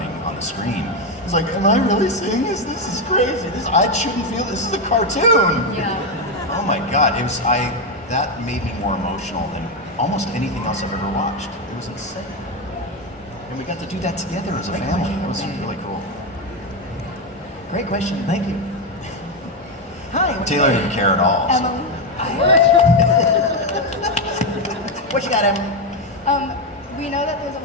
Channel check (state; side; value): normal; both; correlation 0.08